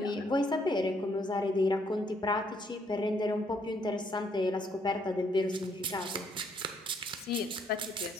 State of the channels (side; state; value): both; normal; correlation 0.70